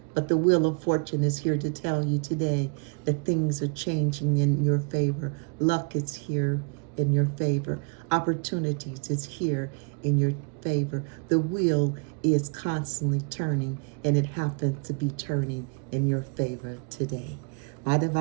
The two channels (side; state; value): left; quieter; 37.8 dB